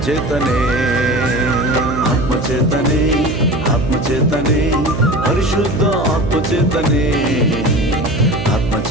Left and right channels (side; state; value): right; noise; hum, 5 dB below the sound